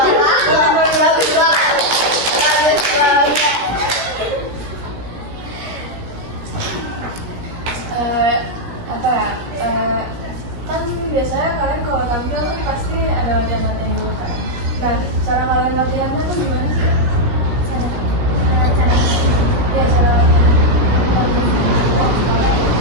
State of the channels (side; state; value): left; late; 17 ms